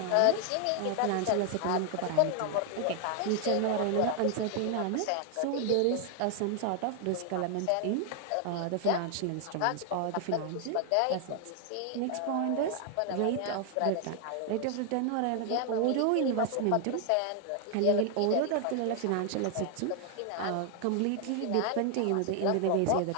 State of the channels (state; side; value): different; both; correlation 0.00